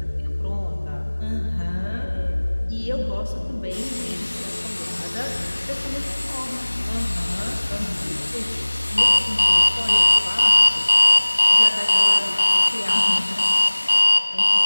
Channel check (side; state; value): both; inverted; correlation -1.00